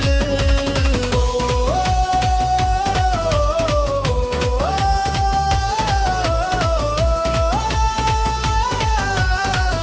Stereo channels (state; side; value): identical; both; correlation 1.00